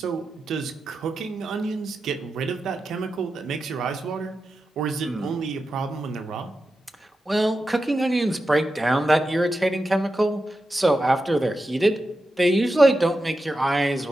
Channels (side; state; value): both; normal; correlation 0.90